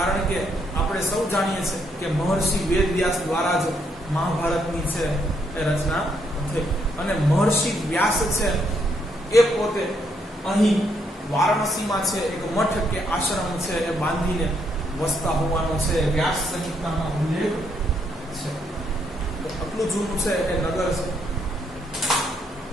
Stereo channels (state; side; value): normal; both; correlation 0.74